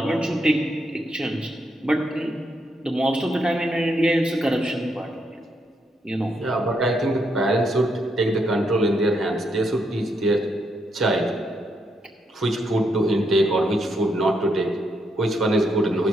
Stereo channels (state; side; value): normal; both; correlation 0.79